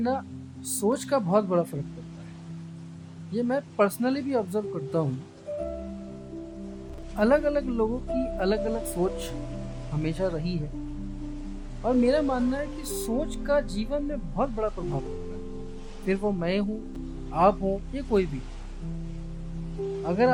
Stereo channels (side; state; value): both; identical; correlation 1.00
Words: सोच का बहुत बड़ा फर्क पड़ता है। ये मैं पर्सनली भी ऑब्जर्व करता हूँ। अलग अलग लोगों की अलग अलग सोच हमेशा रही है और मेरा मानना है कि सोच का जीवन में बहुत बड़ा प्रभाव पड़ता है। फिर वो मैं हूँ, आप हो, या कोई भी। अगर